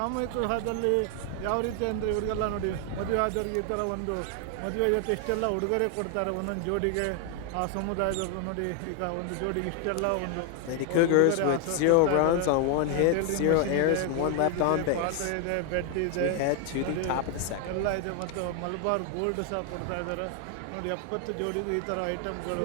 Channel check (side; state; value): both; different; correlation 0.01